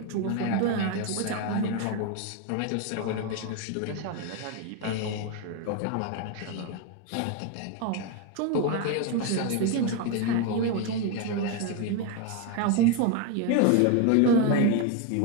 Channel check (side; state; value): both; different; correlation 0.02